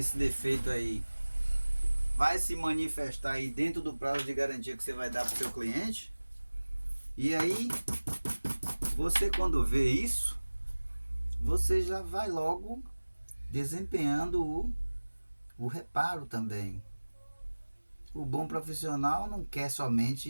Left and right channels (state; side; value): inverted; both; correlation -1.00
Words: defeito aí vai se manifestar aí dentro do prazo de garantia que você vai dar para o seu cliente. E aí você, quando vê isso, você já vai logo desempenhando o reparo também. O bom profissional não quer